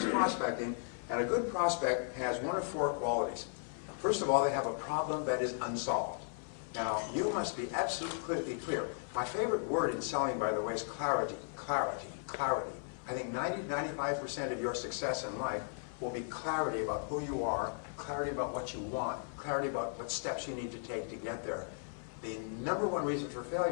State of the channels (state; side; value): silent; right; 54 dB below the other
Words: prospecting, and a good prospect has 1 of 4 qualities. First of all, they have a problem that is unsolved. Now, you must be absolutely clear. My favorite word in selling, by the way, is clarity. Clarity. Clarity. I think 90-95% of your success in life will be clarity about who you are, clarity about what you want, clarity about what steps you need to take to get there. The number 1 reason for